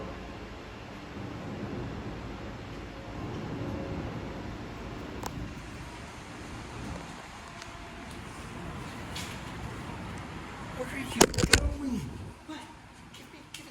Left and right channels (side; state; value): both; identical; correlation 1.00